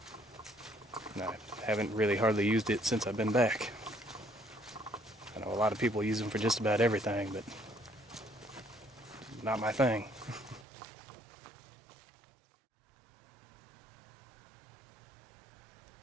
And I haven't really hardly used it since I've been back. I know a lot of people use them for just about everything, but not my thing.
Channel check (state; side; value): drops out; left; at 10.7 s